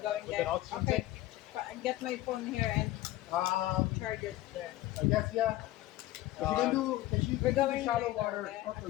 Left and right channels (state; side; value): quieter; right; 16.0 dB